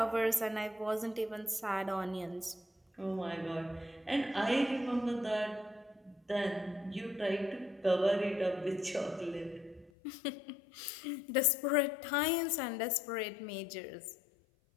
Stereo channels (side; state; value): right; drops out; at 9.9 s